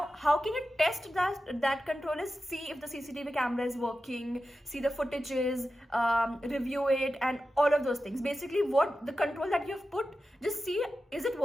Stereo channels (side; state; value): both; normal; correlation 0.92